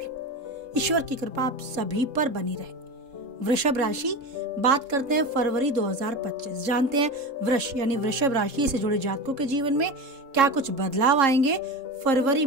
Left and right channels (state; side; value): late; left; 3.7 ms